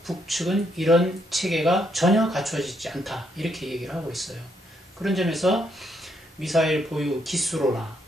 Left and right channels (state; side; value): normal; both; correlation 0.75